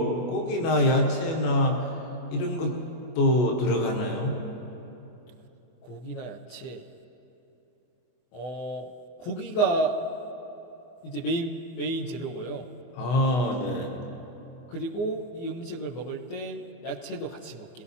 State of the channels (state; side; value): late; right; 24 ms